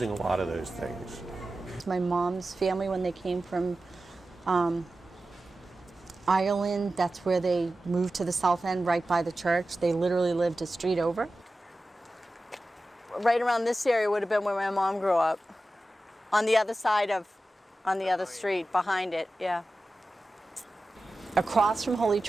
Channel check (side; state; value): both; normal; correlation 0.94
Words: a lot of those things. My mom's family, when they came from Ireland, that's where they moved to the South End, right by the church. They literally lived a street over. Right around this area would have been where my mom grew up. On the other side of, on the other street, behind it, yeah. Across from Holy